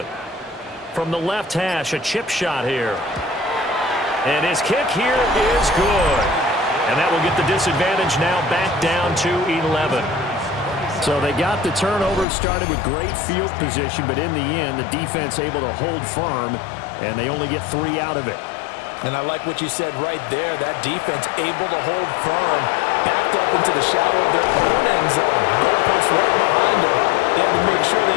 From the left hash, a chip shot here. And his kick here is good. And that will get the disadvantage now back down to 11. So they got the turnover, started with great field position, but in the end, the defense able to hold firm, and they only get 3 out of it. And I like what you said right there. That defense able to hold firm, backed up into the shadow of their own end zone. Goalpost right behind them. They had to make sure they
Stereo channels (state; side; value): drops out; right; at 12.2 s